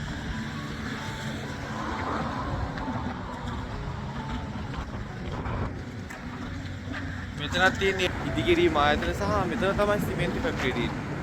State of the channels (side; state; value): both; identical; correlation 1.00